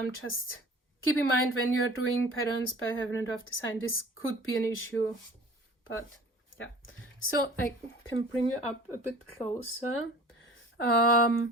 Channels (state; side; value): normal; both; correlation 0.44